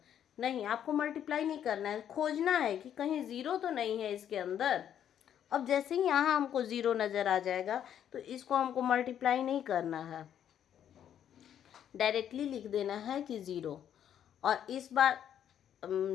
नहीं, आपको मल्टीप्लाई नहीं करना है, खोजना है कि कहीं ज़ीरो तो नहीं है इसके अंदर। अब जैसे ही यहाँ हमको ज़ीरो नज़र आ जाएगा तो इसको हमको मल्टीप्लाई नहीं करना है, डायरेक्टली लिख देना है कि ज़ीरो। और इस बार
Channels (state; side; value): quieter; right; 9.7 dB